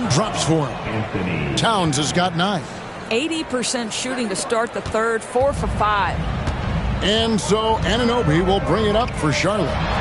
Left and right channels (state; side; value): identical; both; correlation 1.00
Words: drops for him. Towns has got 9. 80% shooting to start the third, 4 for 5. And so Anunoby will bring it up for Charlotte.